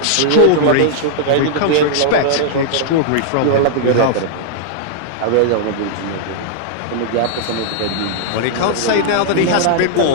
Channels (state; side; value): different; both; correlation -0.01